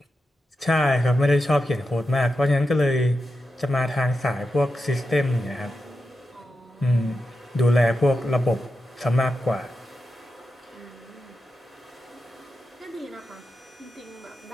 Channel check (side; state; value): both; normal; correlation 0.89